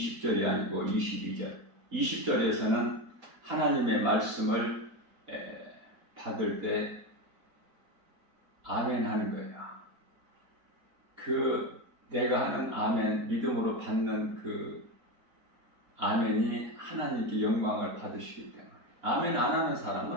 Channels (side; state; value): left; late; 4.2 ms